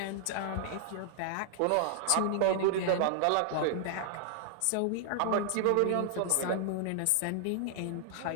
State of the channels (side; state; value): both; different; correlation -0.01